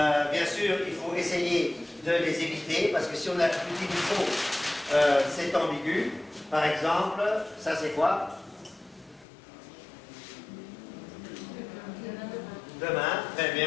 sûr, il faut essayer de les éviter, parce que si on utilise trop, c'est ambigu. Par exemple, ça c'est quoi? Demain, très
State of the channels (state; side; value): drops out; right; at 9.2 s